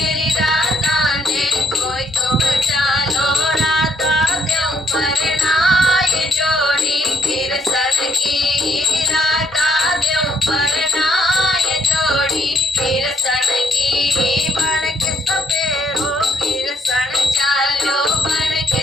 राधा ने कोई तो बचा लो राधा देव परनाए जोड़ी किरसन की राधा देव परनाए जोड़ी किरसन की बन के सपेरो किरसन चालो बन के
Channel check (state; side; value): normal; both; correlation 0.66